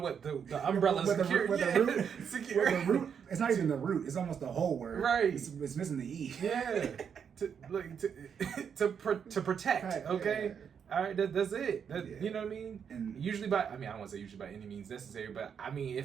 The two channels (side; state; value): left; quieter; 7.3 dB